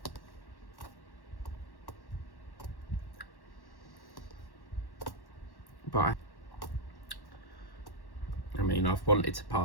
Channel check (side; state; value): right; late; 1.1 ms